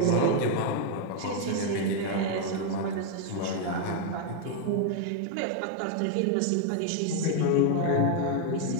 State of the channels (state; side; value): different; both; correlation 0.01